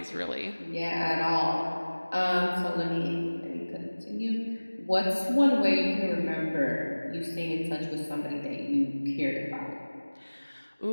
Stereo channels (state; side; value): inverted; both; correlation -1.00